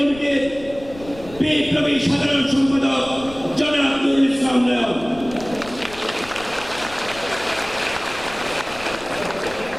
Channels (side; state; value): left; noise; rumble, 18 dB below the sound